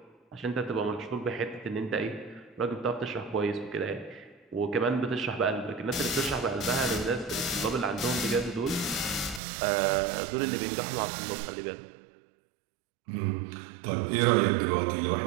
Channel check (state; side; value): drops out; left; at 9.4 s